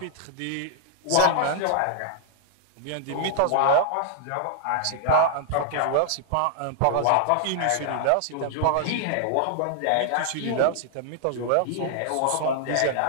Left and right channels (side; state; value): both; different; correlation -0.01